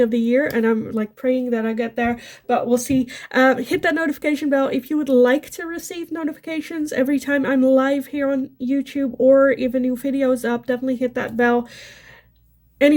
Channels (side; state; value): both; identical; correlation 1.00